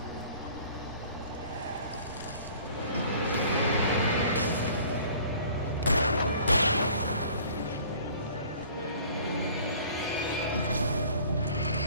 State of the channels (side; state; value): both; inverted; correlation -0.50